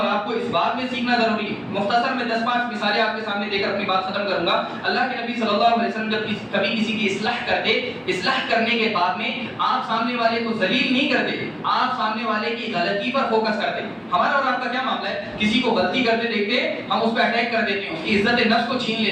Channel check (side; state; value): both; identical; correlation 1.00